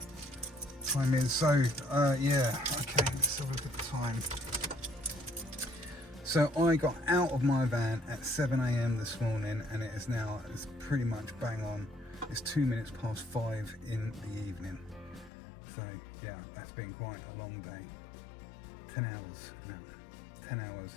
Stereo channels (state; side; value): drops out; right; at 15.3 s